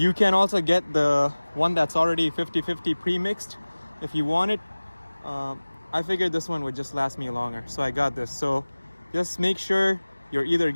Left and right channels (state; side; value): inverted; both; correlation -1.00